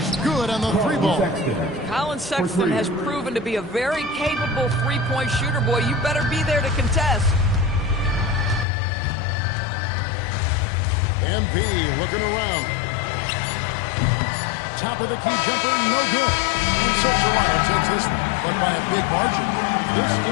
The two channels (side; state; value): right; drops out; at 8.7 s